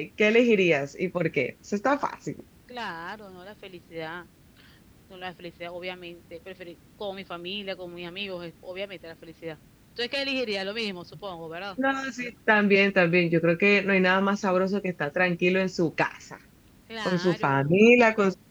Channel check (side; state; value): both; identical; correlation 1.00